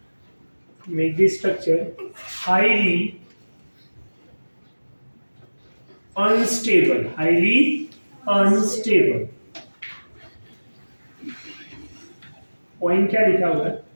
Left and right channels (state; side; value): inverted; both; correlation -1.00